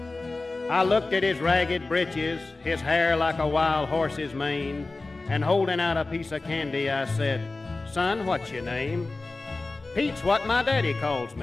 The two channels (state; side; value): quieter; right; 3.4 dB